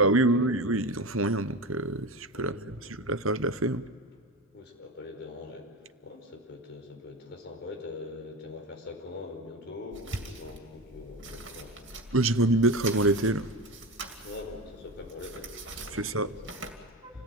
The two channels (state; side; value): normal; both; correlation 0.23